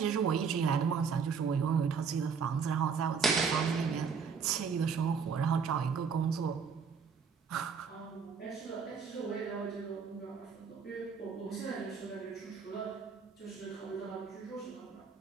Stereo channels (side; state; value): left; quieter; 6.0 dB